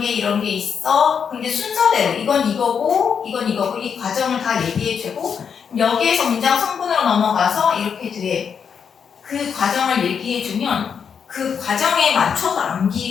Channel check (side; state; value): right; quieter; 6.9 dB